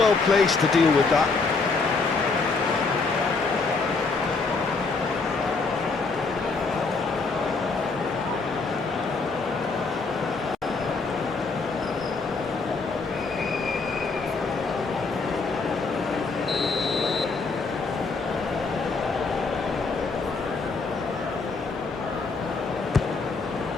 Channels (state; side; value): quieter; right; 4.2 dB